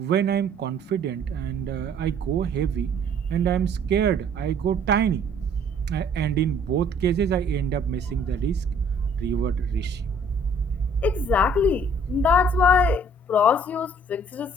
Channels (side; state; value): both; normal; correlation 0.58